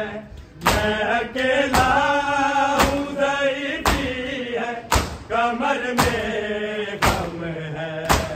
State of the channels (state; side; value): identical; both; correlation 1.00